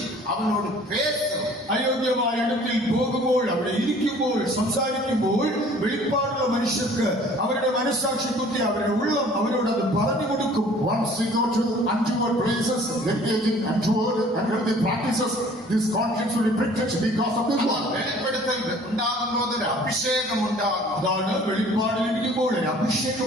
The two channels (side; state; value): both; normal; correlation 0.52